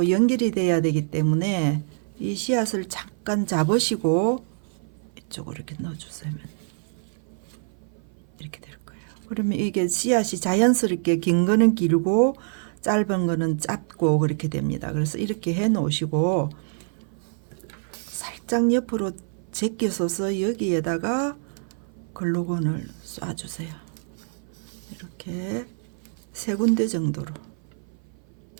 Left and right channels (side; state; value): left; silent; 56 dB below the other